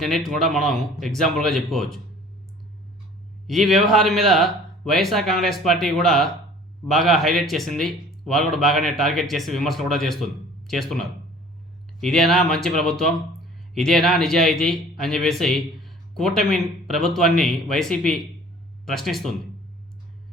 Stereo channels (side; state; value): both; normal; correlation 0.49